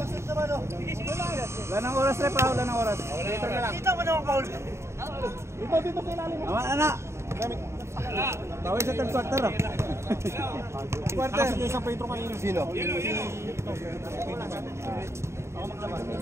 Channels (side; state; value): left; late; 0.13 ms